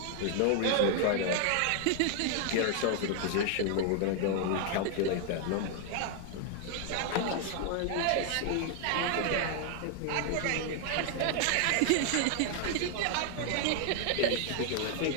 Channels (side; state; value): both; different; correlation 0.00